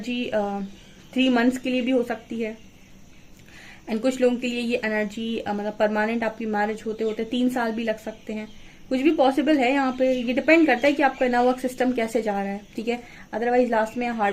3 मंथ्स के लिए भी हो सकती है एंड कुछ लोगों के लिए ये एनर्जी मतलब परमानेंट आपकी मैरिज होते होते 3 साल भी लग सकते हैं। कुछ भी पॉसिबल है यहाँ पे, ये डिपेंड करता है कि आपका इनर वर्क सिस्टम कैसे जा रहा है, ठीक है। अदरवाइज लास्ट में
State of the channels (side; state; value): both; identical; correlation 1.00